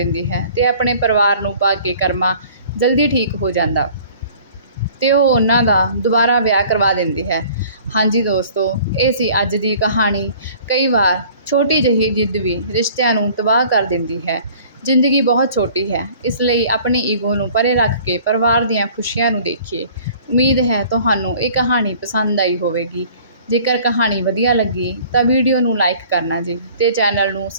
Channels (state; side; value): inverted; both; correlation -0.51